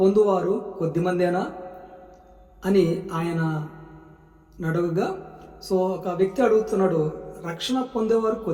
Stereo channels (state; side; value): identical; both; correlation 1.00